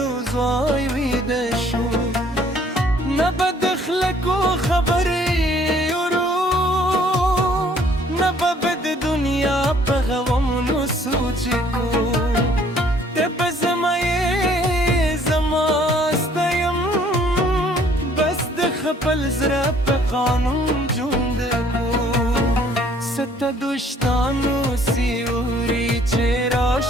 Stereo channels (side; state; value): both; normal; correlation 0.60